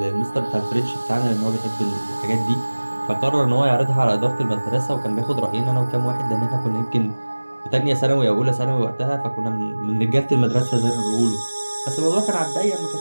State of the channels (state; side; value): inverted; both; correlation -1.00